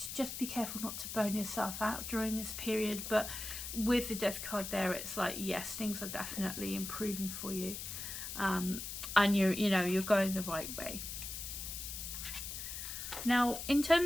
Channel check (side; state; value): left; noise; hiss, 6 dB below the sound